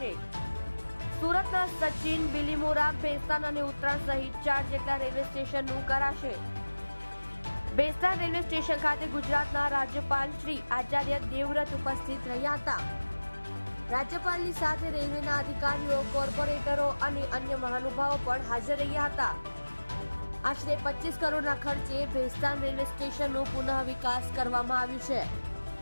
સુરતના સચિન, બિલીમોરા, ભેસ્તાન અને ઉત્તરાણ સહિત 4 જેટલા રેલવે સ્ટેશનનું કરાશે। ભેસ્તાન રેલવે સ્ટેશન ખાતે ગુજરાતના રાજ્યપાલ શ્રી આચાર્ય દેવવ્રત ઉપસ્થિત રહ્યા હતા। રાજ્યપાલની સાથે રેલવેના અધિકારીઓ, કોર્પોરેટરો અને અન્ય મહાનુભાવો પણ હાજર રહ્યા હતા। આશરે 25 કરોડના ખર્ચે ભેસ્તાન રેલવે સ્ટેશનનો પુનઃ વિકાસ કરવામાં આવ્યું છે।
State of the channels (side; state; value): both; inverted; correlation -1.00